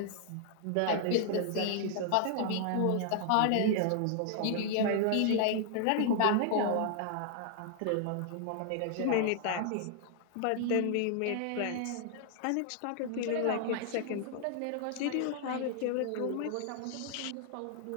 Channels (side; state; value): both; different; correlation 0.00